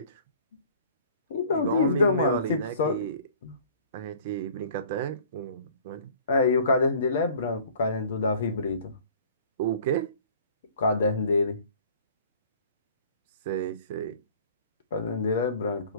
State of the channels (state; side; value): inverted; both; correlation -0.50